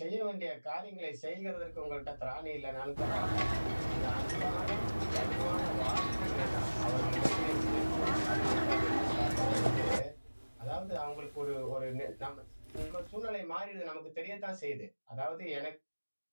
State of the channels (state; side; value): inverted; both; correlation -1.00